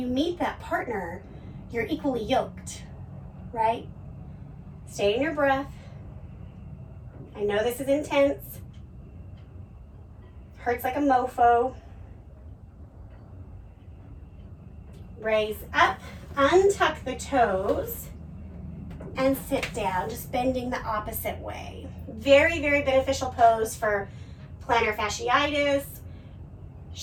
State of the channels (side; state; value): both; identical; correlation 1.00